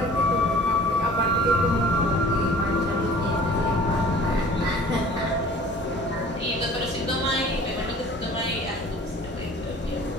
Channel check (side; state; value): both; normal; correlation 0.48